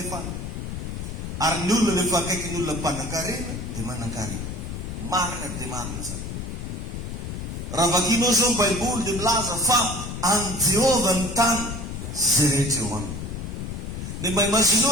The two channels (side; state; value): left; noise; rumble, 6 dB below the sound